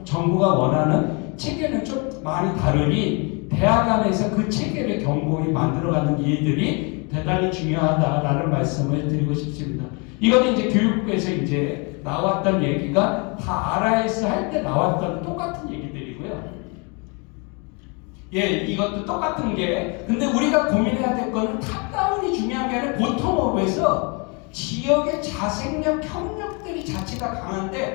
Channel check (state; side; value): quieter; right; 32.5 dB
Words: 정부가 원하는 체계는 좀 많이 다르니 대학 안에서 그 체계를 견고히 만들어가는 일들이 대단히 중요하다라는 말씀을 드리고 싶습니다. 이거는 이제 교육부에서 이제 나왔던 얘기가 다 RIS 할 때 나왔던 똑같은 얘기들이고요. 예, 이것도 똑같은 게, 근데 우리가 고민해야 될 거는 탑다운이 중요한 게 아니라 보통업에서 지역의 자생력, 협력들이 자체가